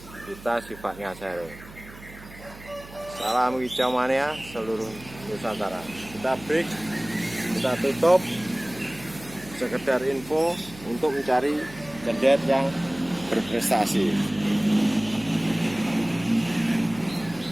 kita sifatnya sharing. Salam Kicau Mania seluruh Nusantara. Kita break, kita tutup. Sekedar info untuk mencari cendet yang berprestasi.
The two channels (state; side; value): noise; right; hum, 18 dB below the sound